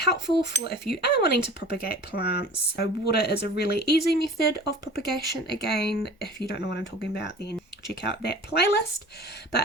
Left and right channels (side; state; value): both; normal; correlation 0.42